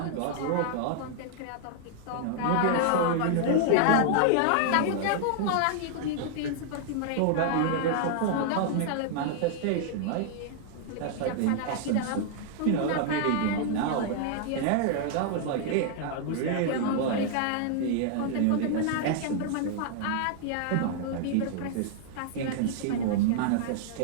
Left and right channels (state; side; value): different; both; correlation -0.01